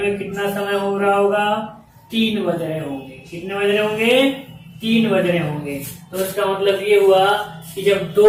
कितना समय हो रहा होगा, 3 बज रहे होंगे। कितने बज रहे होंगे, 3 बज रहे होंगे। तो इसका मतलब ये हुआ कि जब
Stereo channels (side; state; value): both; identical; correlation 1.00